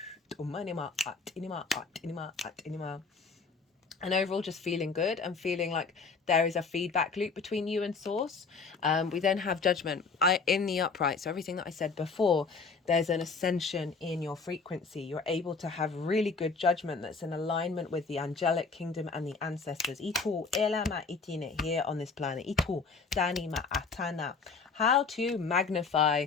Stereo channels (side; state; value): right; quieter; 4.7 dB